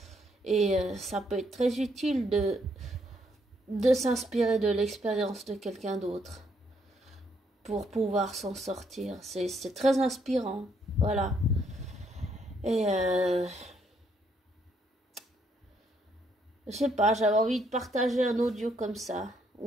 Et ça peut être très utile de s'inspirer de l'expérience de quelqu'un d'autre pour pouvoir s'en sortir. C'est très inspirant. Voilà. Et je sais pas, j'avais envie de partager un audio comme ça,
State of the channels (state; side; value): normal; both; correlation 0.72